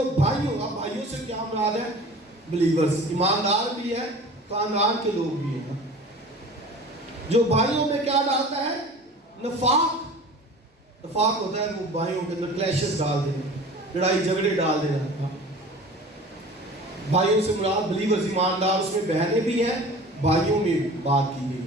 بھائیوں، اب بھائیوں سے کیا مراد ہے؟ بلیورز، ایماندار بھی ہے، خاندان کے لوگ بھی ہیں. جو بھائیوں میں کیا ڈالتا ہے؟ نفاق. نفاق ہوتا ہے وہ بھائیوں کے اندر کلیشز ڈال دینا، لڑائی جھگڑے ڈال دینا. بھائیوں سے مراد بلیورز، ایماندار. اس میں بہنیں بھی ہیں، بھائیوں میں بات کی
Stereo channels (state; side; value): normal; both; correlation 0.41